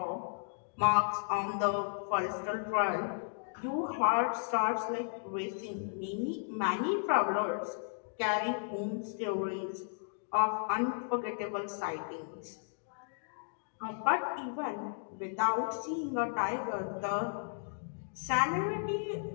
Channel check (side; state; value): right; silent; digital silence